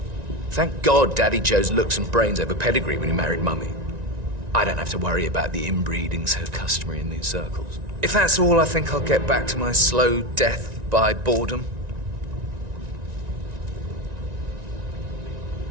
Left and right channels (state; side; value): late; left; 1.9 ms